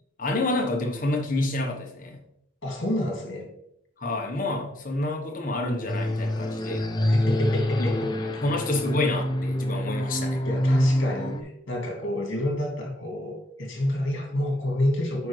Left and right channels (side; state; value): both; normal; correlation 0.74